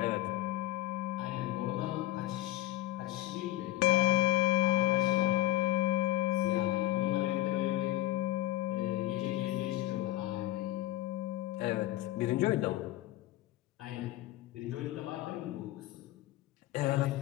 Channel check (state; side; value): quieter; right; 16.0 dB